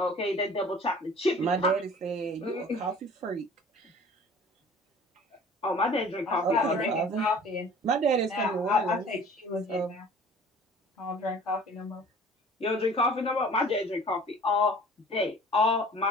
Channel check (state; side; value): normal; both; correlation 0.47